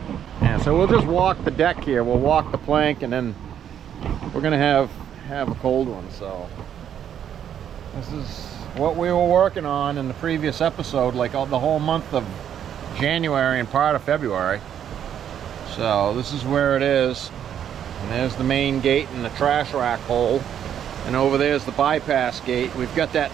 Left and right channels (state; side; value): quieter; left; 9.4 dB